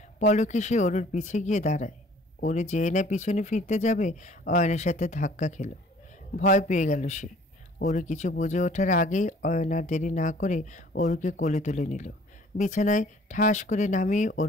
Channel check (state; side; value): normal; both; correlation 0.54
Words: পলকে সে অরুর পিছে গিয়ে দাঁড়ায়। অরু যেয়ে না পিছনে ফিরতে যাবে, অয়নের সাথে ধাক্কা খেল। ভয় পেয়ে গেল সে। অরু কিছু বুঝে ওঠার আগেই অয়ন আর দেরি না করে অরুকে কোলে তুলে নিল। বিছানায় ঠাস করে নামিয়ে